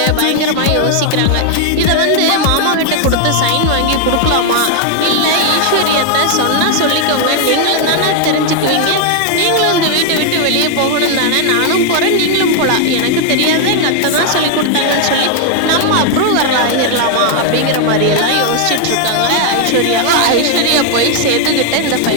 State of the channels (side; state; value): both; different; correlation 0.00